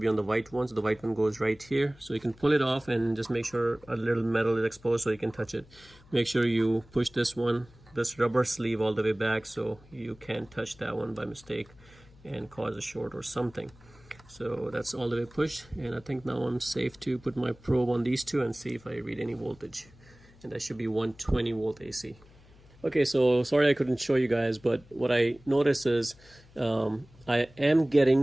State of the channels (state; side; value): noise; left; hum, 25 dB below the sound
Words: on the white one. So the white one goes right here, so you can pull it off and just make sure a little metal is exposed so you can touch it. Make sure you push this rubber sleeve all the way back so you can't touch that one by mistake and cause a short or something. So that's all the way pushed, and I think now I'm safe to put my probe on these 2 and see if I read any voltage, and that should be 120 volt AC. Okay, so sorry I couldn't show you guys, but what I notice is I am